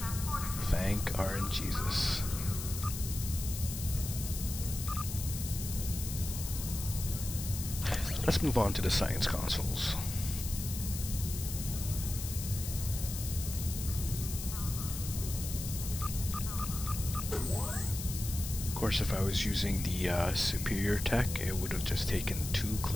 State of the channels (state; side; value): noise; left; hiss, 7 dB below the sound